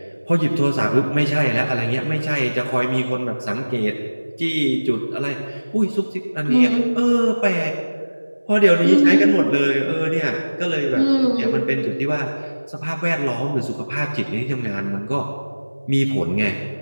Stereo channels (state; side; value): inverted; both; correlation -1.00